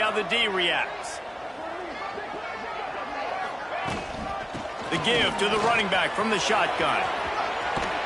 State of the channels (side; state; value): both; identical; correlation 1.00